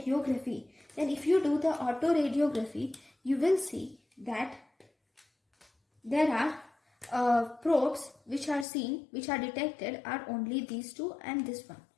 Then if you do the autoradiography, you will see that there are probes which are detected are only these two and this one.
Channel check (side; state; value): right; drops out; at 8.7 s